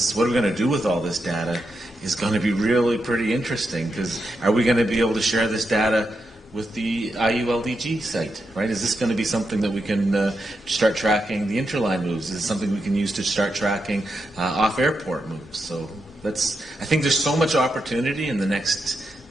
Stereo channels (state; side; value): normal; both; correlation 0.85